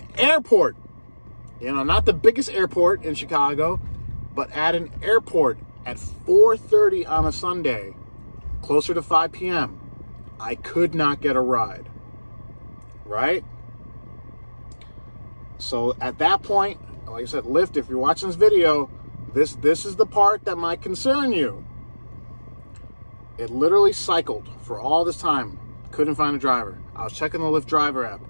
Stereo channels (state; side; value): inverted; both; correlation -1.00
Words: airport. Not the biggest airport in Chicago, but at an airport at 4:30 on a Sunday, closer to 5 p.m., I could not get a ride, right? So at that point, like I said, Lyft, if you're watching this video, this is the part that might concern you. It literally cycled for all this time. Couldn't find a driver. I was checking the Lyft driver app.